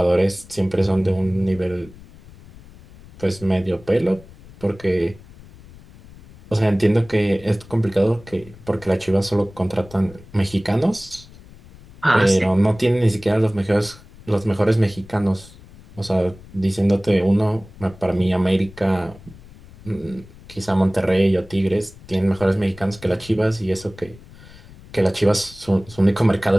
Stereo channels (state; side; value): noise; left; rumble, 21 dB below the sound